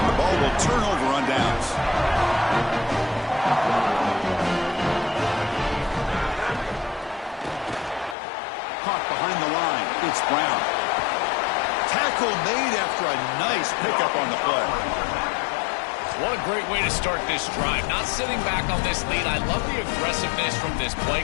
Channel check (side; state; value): right; drops out; at 8.2 s